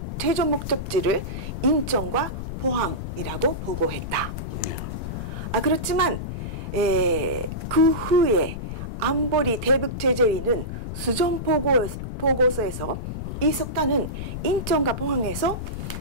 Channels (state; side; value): noise; left; rumble, 5 dB below the sound